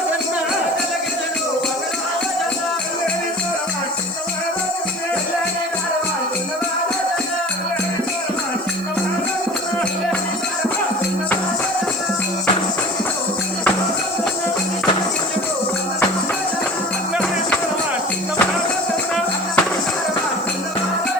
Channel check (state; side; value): noise; right; hiss, 22 dB below the sound